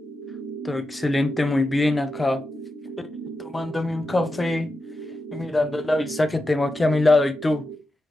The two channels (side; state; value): both; normal; correlation 0.89